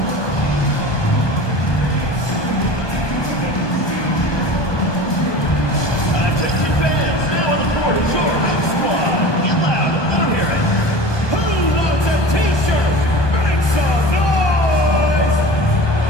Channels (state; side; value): late; right; 1.2 ms